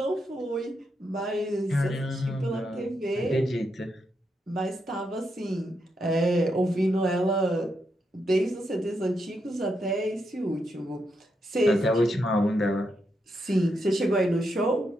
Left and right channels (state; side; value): normal; both; correlation 0.82